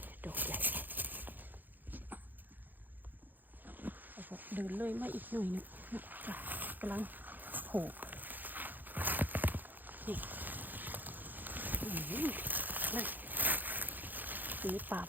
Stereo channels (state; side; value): late; left; 0.087 ms